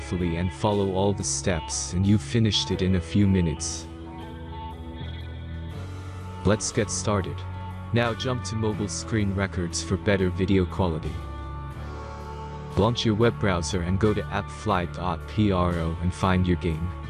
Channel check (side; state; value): both; identical; correlation 1.00